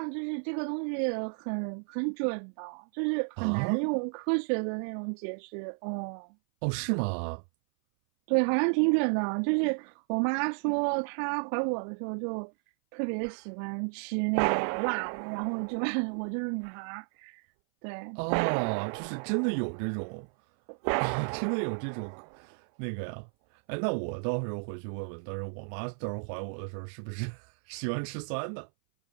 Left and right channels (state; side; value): silent; left; 56 dB below the other